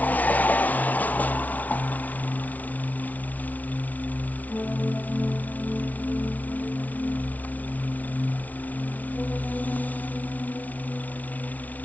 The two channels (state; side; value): late; right; 0.074 ms